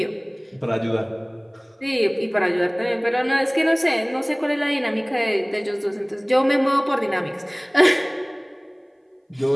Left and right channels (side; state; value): both; identical; correlation 1.00